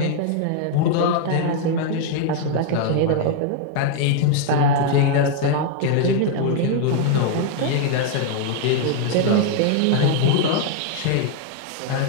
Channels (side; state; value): both; different; correlation 0.00